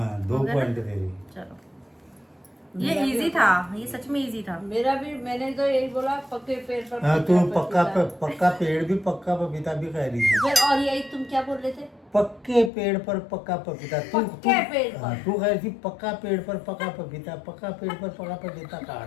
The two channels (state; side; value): drops out; right; at 12.7 s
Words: 2 हो गया ना? पॉइंट तेरी। चलो ये इजी था, ये सच में इजी था। मेरा भी, मैंने तो यही बोला पक्के पेड़ पर हाँ तू पक्का पक्का पेड़ भी पक्का पपीता भी कह रही थी। फिर और यही तुम क्या बोल रहे थे? पक्के पेड़ पर पक्का पपीता। पक्के पेड़ पर। हाँ, तू कह रही थी पक्का पेड़ पर पक्का पपीता, पक्का पेड़ पर पक्का पपीता कहा